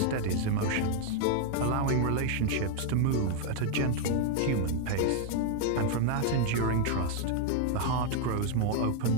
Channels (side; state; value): both; different; correlation 0.00